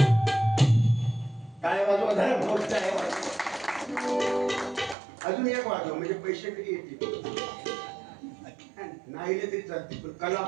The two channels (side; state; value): left; drops out; at 5.0 s